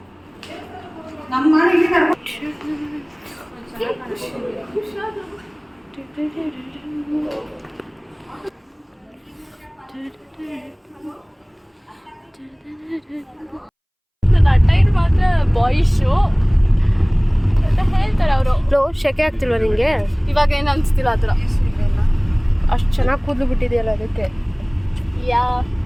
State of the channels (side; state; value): both; identical; correlation 1.00